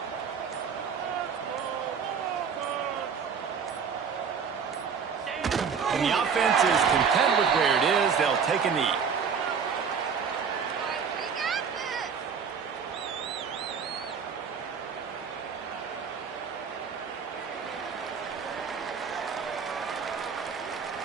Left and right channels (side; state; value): left; quieter; 6.4 dB